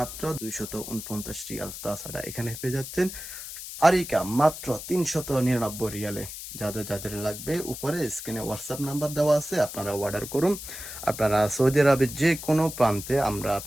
249 রিয়াল। তাছাড়া এখানে পেয়ে যাচ্ছেন আরিকা মাত্র 399 রিয়ালে। যাদের যাদের লাগবে উপরে স্ক্রিনে হোয়াটসঅ্যাপ নাম্বার দেওয়া আছে, আপনারা অর্ডার করুন। আপনারা সৌদি আরবের যে কোনো প্রান্তে আমরা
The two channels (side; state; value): left; noise; hiss, 10 dB below the sound